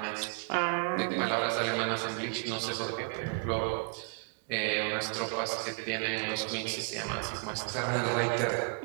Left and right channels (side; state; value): left; quieter; 40.0 dB